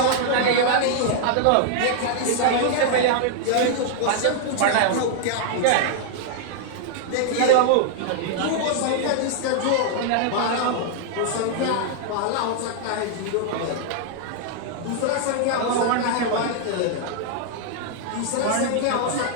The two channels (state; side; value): different; both; correlation -0.01